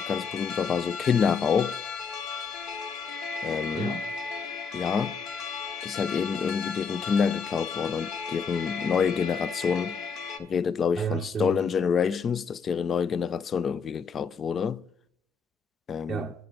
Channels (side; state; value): right; quieter; 5.6 dB